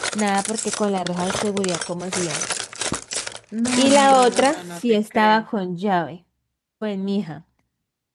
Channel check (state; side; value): identical; both; correlation 1.00